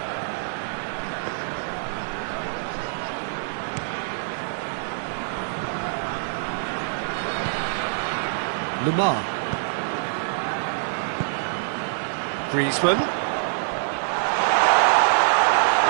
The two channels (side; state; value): left; silent; digital silence